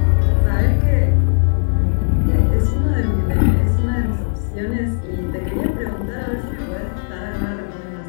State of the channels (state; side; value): silent; right; digital silence